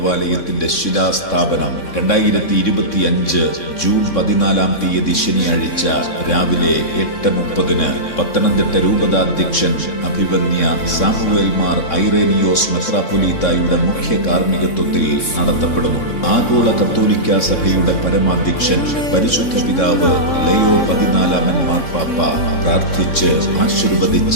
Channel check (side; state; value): right; late; 3.6 ms